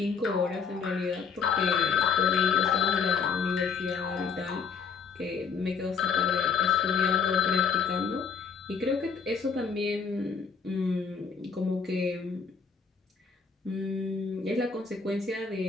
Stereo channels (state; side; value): quieter; right; 5.8 dB